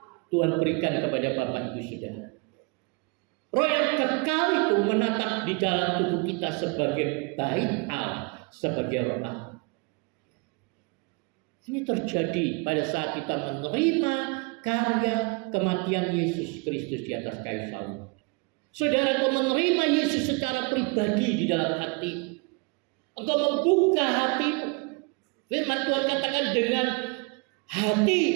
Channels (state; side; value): quieter; left; 31.3 dB